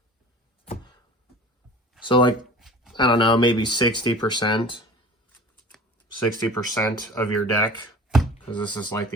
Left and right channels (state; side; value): normal; both; correlation 0.40